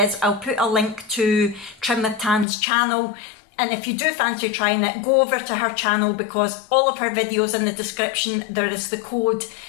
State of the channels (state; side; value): drops out; right; at 2.5 s